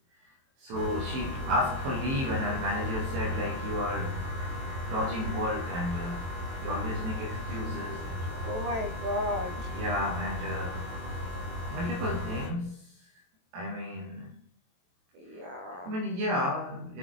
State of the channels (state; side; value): late; left; 23 ms